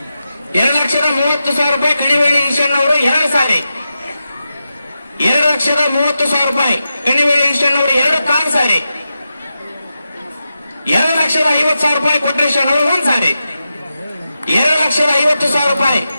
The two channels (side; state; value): both; inverted; correlation -0.90